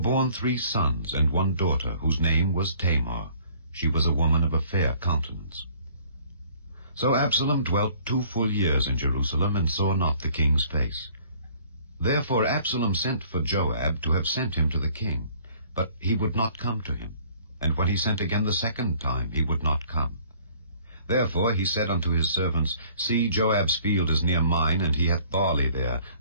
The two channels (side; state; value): both; inverted; correlation -0.57